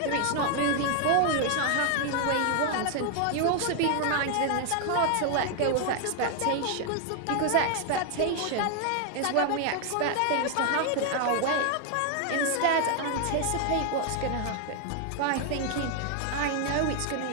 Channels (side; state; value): both; different; correlation 0.00